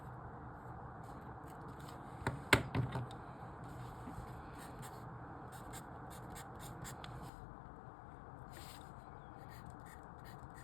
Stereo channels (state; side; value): drops out; right; at 7.3 s